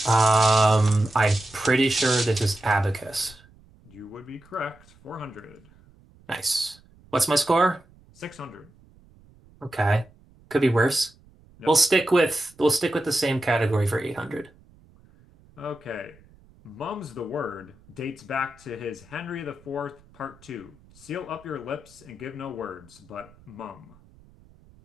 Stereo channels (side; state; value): right; noise; rumble, 27 dB below the sound